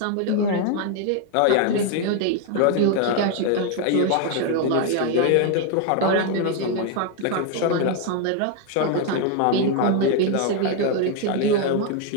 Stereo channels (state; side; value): different; both; correlation 0.01